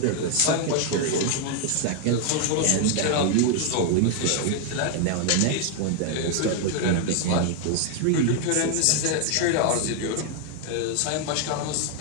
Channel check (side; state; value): both; different; correlation 0.00